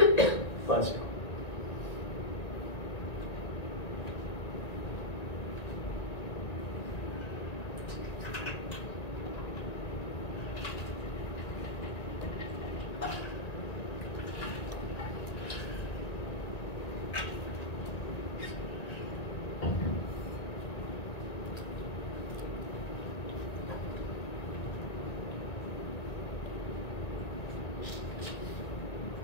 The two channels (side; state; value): right; late; 1.9 ms